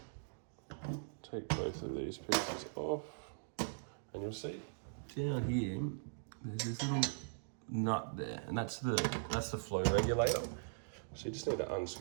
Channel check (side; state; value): left; silent; digital silence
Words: Take both of these pieces off, and you'll see down here there's this little nut there, and that's the flow regulator. So you just need to